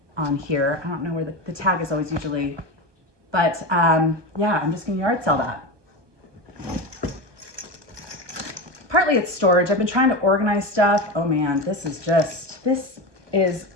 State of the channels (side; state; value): left; late; 1.2 ms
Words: on here. I don't know where the tag is always usually, but yeah, I'm just gonna yard sell that. Partly it's storage. I've been trying to organize stuff. Oh man,